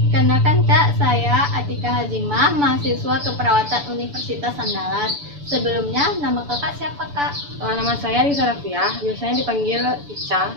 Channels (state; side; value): late; left; 7.0 ms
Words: Kenalkan Kak, saya Atika Hazimah, mahasiswa keperawatan Universitas Andalas. Sebelumnya, nama Kakak siapa Kak? Nama saya Risa Rafiah, biasanya dipanggil Ica.